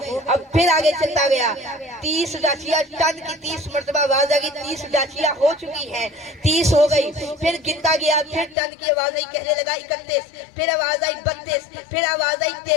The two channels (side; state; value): right; drops out; at 8.6 s